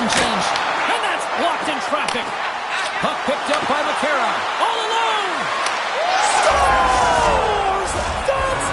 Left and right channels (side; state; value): both; identical; correlation 1.00